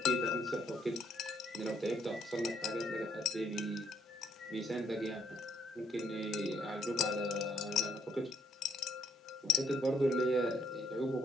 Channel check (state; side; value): normal; both; correlation 0.70